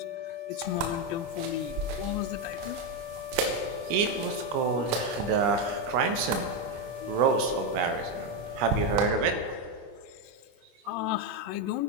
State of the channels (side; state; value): left; late; 25 ms